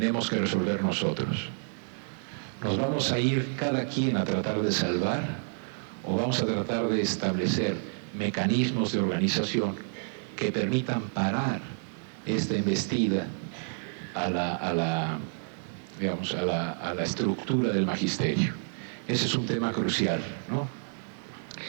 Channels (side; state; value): left; silent; digital silence